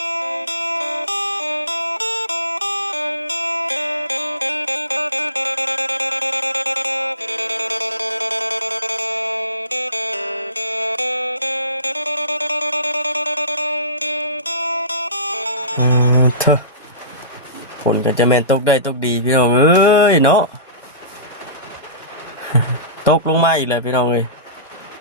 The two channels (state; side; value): inverted; both; correlation -0.35